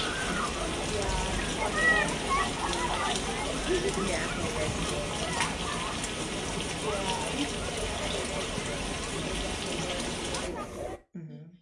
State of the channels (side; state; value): both; identical; correlation 1.00